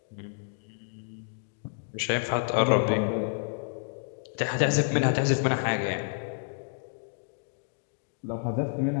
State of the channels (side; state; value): right; silent; digital silence